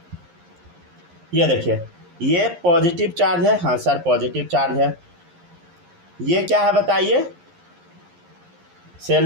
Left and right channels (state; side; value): late; left; 11 ms